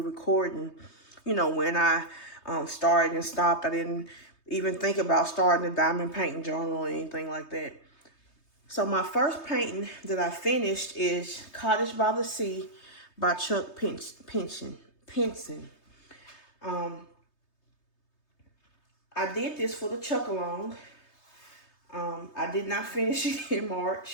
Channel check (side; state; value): right; late; 3.3 ms